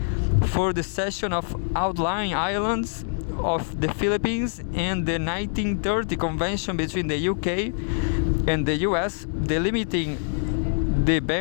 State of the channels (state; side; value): silent; right; 60 dB below the other